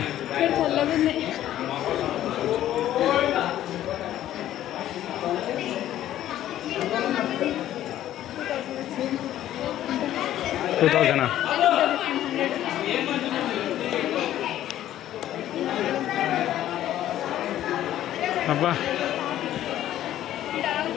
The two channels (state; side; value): quieter; right; 12.6 dB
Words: టూ థౌజండా? అబ్బా